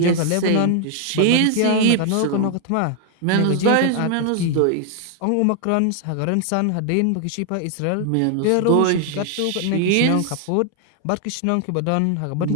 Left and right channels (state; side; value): different; both; correlation 0.00